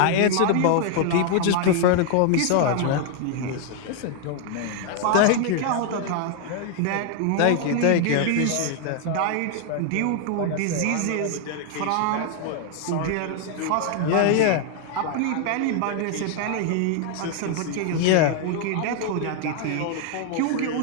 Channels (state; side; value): different; both; correlation 0.00